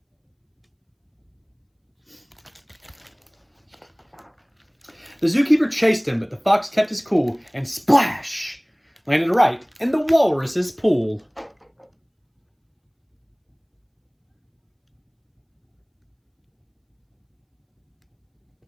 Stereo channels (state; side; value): identical; both; correlation 1.00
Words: The zookeeper chased him, but the fox kept his cool and splash! Landed right in the walrus's pool.